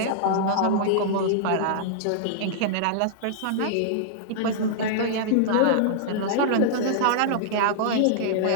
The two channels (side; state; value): both; different; correlation -0.02